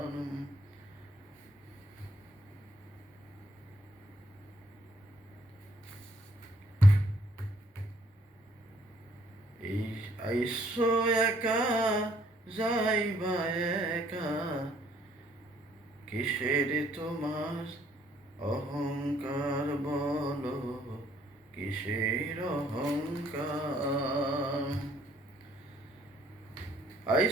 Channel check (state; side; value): normal; both; correlation 0.65